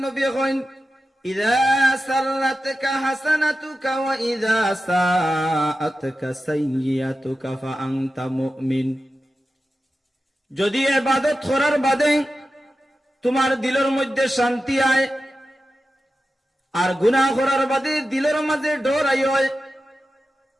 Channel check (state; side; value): normal; both; correlation 0.92